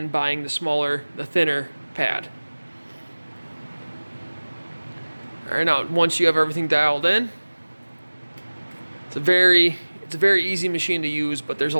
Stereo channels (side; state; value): both; inverted; correlation -1.00